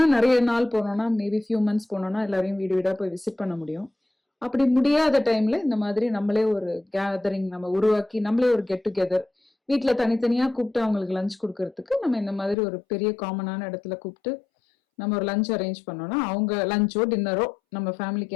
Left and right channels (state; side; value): drops out; right; at 12.6 s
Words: நிறைய நாள் போனோம்னா, மேபி ஃபியூ மந்த்ஸ் போனோம்னா எல்லாரையும் வீடு வீடாக போய் விசிட் பண்ண முடியும். அப்படி முடியாத டைம்ல இந்த மாதிரி நம்மளே ஒரு கேதரிங் நம்ம உருவாக்கி நம்மளே ஒரு கெட் டுகெதர் வீட்டில் தனித்தனியாக கூப்பிட்டு அவங்களுக்கு லஞ்ச் கொடுக்கறதுக்கு நம்ம இந்த மாதிரி ஒரு பெரிய காமனான இடத்துல கூப்பிட்டு நம்ம ஒரு லஞ்ச் அரேஞ்ச் பண்ணோம்னா, அவங்க லஞ்சோ டின்னரோ நம்ம ஃபேமிலிக்கு